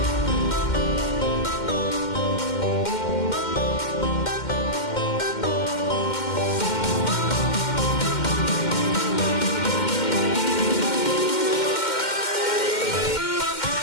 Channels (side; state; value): right; late; 2.1 ms